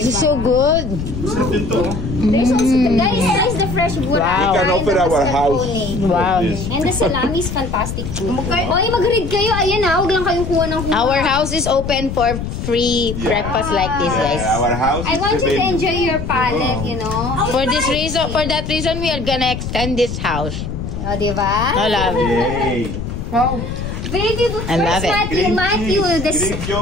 is so good. There's also guys, the fresh burrata. Wow. We can open our house. Wow. And the salami is fantastic too. Oy, mag-read kayo. Ayan na, huwag lang kayong kuha ng kuha. Our house is open for free breakfast like this, guys. Our house I want you to enjoy your palate, you know. For that reason, we are gonna extend this house. O, diba? I love it. Wow. Baby, I love it. Matthew, this Greek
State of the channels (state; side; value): noise; left; rumble, 6 dB below the sound